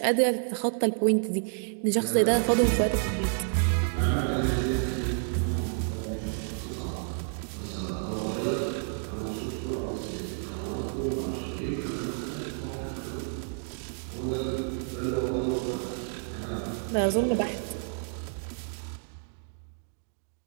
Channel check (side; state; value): left; silent; digital silence